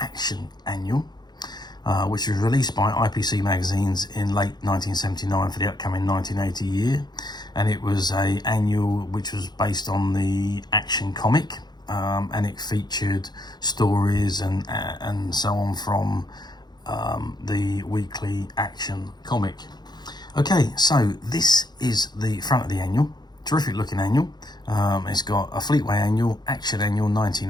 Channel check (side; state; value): right; late; 0.20 ms